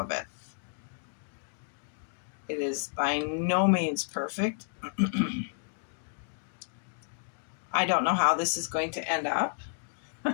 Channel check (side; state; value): right; silent; digital silence